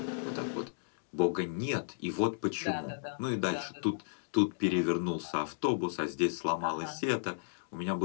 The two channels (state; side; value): silent; right; digital silence